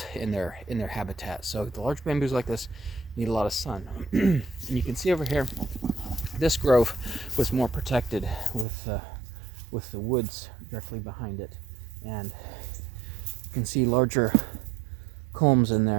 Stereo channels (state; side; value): drops out; left; at 8.7 s